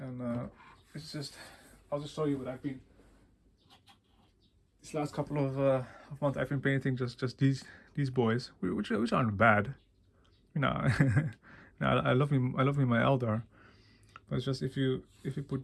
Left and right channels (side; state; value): both; identical; correlation 1.00